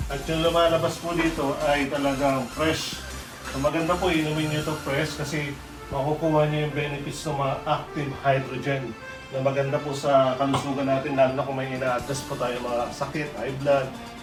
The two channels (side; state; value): both; identical; correlation 1.00